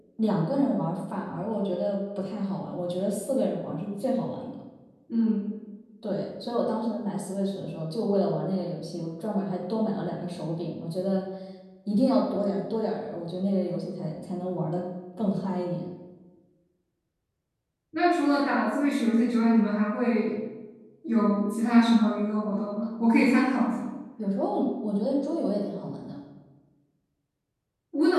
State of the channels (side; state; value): both; identical; correlation 1.00